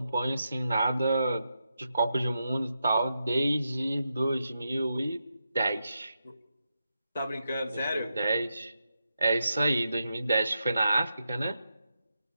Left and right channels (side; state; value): both; inverted; correlation -0.86